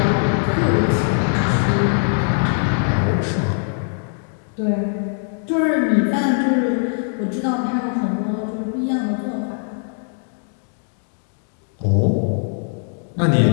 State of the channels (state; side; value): silent; right; digital silence